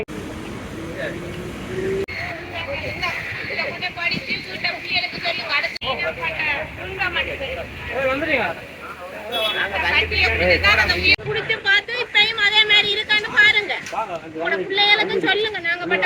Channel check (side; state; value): both; identical; correlation 1.00